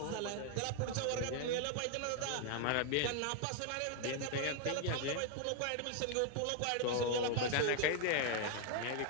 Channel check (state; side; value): different; both; correlation 0.00